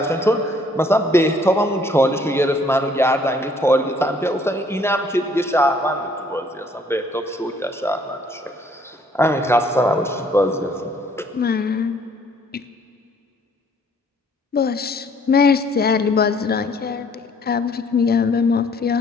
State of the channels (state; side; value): normal; both; correlation 0.61